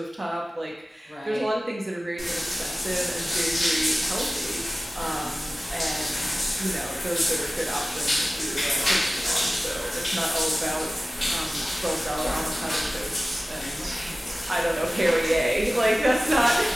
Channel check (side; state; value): both; normal; correlation 0.97